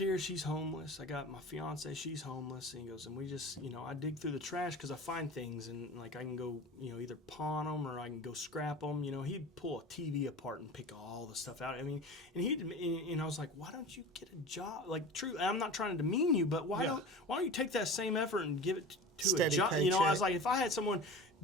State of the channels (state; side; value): normal; both; correlation 0.35